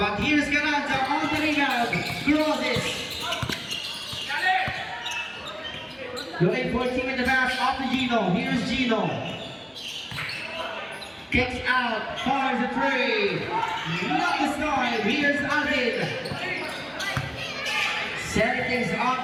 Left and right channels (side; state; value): both; identical; correlation 1.00